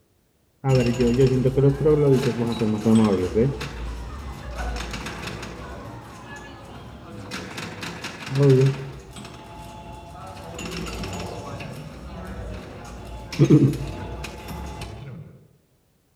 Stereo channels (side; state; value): both; identical; correlation 1.00